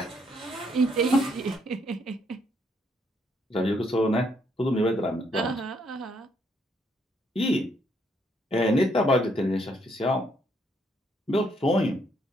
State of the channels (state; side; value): normal; both; correlation 0.72